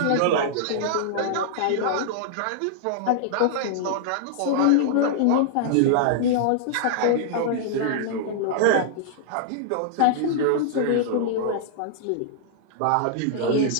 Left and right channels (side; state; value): both; different; correlation -0.01